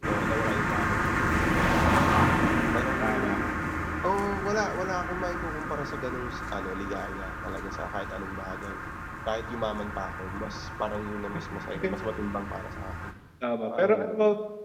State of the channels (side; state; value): both; identical; correlation 1.00